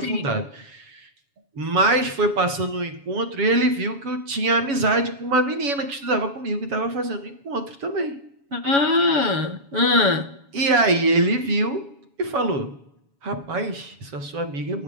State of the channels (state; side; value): late; left; 7.2 ms